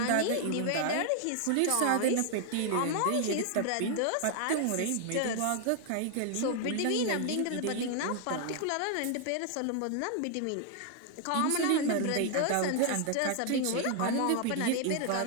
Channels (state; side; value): different; both; correlation 0.00